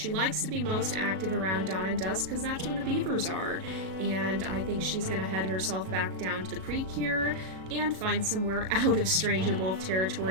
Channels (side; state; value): left; late; 37 ms